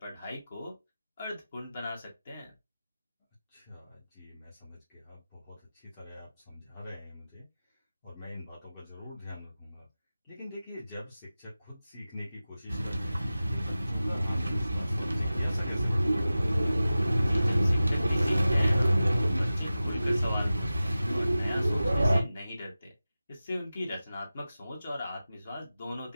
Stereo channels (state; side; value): inverted; both; correlation -0.95